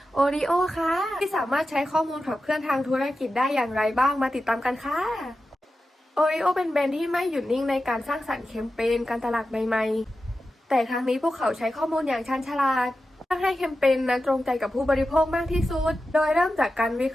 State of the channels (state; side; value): normal; both; correlation 0.92